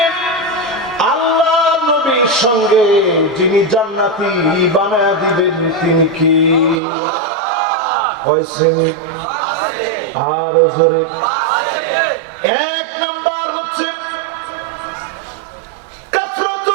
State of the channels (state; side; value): drops out; left; at 6.8 s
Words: আল্লাহ নবীর সঙ্গে যিনি জান্নাতি বানায়া দিবেন তিনি কি? কয় শ্রেণী? আর জোরে। 1 নাম্বার হচ্ছে